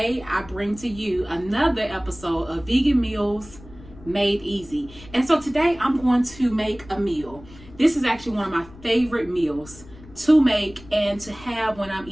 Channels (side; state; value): left; noise; rumble, 20 dB below the sound